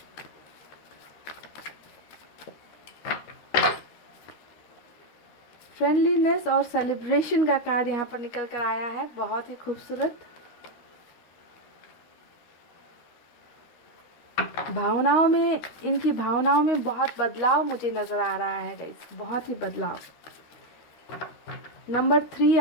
फ्रेंडलीनेस और सेलिब्रेशन का कार्ड यहाँ पर निकल कर आया है, बहुत ही खूबसूरत। भावनाओं में, इनकी भावनाओं में बहुत बदलाव मुझे नज़र आ रहा है गाइस, बहुत ही बदलाव। नंबर 3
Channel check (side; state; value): right; late; 13 ms